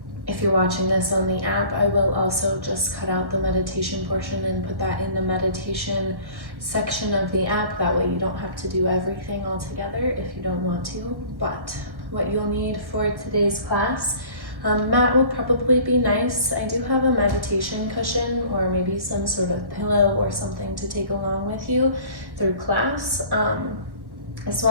If you're watching this on the app, I will also just cut out the meditation portion and put that in the meditation section of the app. That way you don't have to do everything all together if you don't want to. But what you'll need for today's class, mat will probably be nice. I do have a meditation cushion or maybe some sort of pillow or something to take along with you through class, as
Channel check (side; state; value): left; late; 1.1 ms